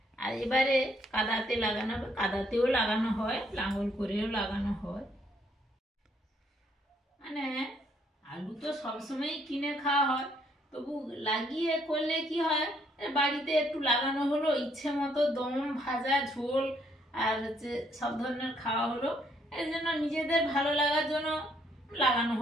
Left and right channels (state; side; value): normal; both; correlation 0.69